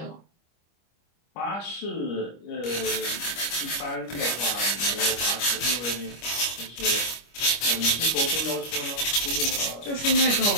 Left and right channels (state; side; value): late; right; 25 ms